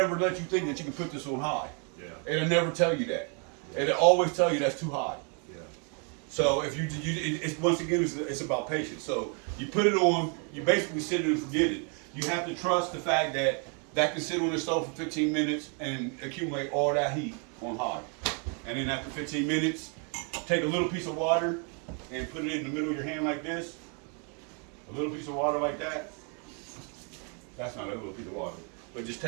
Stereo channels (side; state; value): left; quieter; 38.1 dB